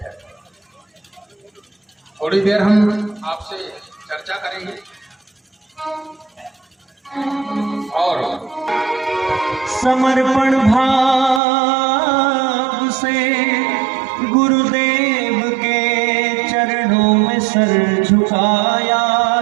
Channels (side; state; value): left; drops out; at 11.4 s